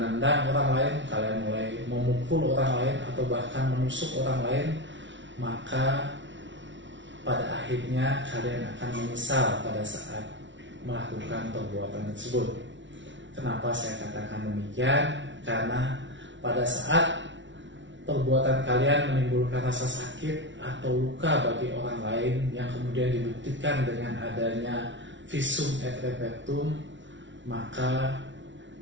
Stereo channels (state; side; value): late; left; 0.55 ms